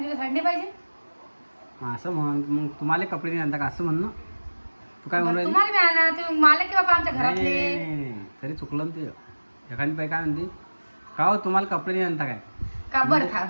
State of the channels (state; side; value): inverted; both; correlation -1.00